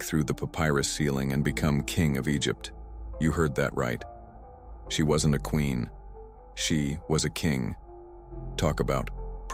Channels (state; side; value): identical; both; correlation 1.00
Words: through the papyrus ceiling and become king of Egypt. You heard that right. She wasn't a queen. She was a king. Talk about